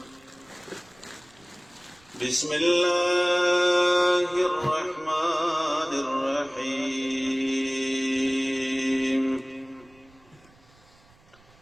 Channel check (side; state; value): right; noise; rumble, 29 dB below the sound